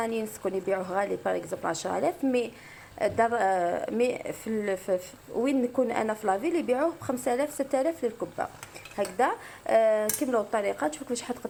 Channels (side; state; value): both; identical; correlation 1.00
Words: نسكن يبيعوه غالي باغ اكزومبل 10000، مي دار مي وين نكون انا في لافيل يبيعوه ب 5000 6000 للكبه هكذا. كملوا الطريقه، تشوفوا كيفاش